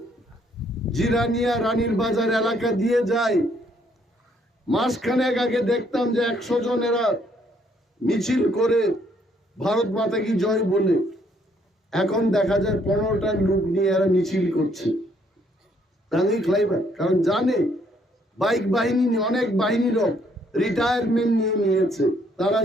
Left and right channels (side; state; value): both; normal; correlation 0.68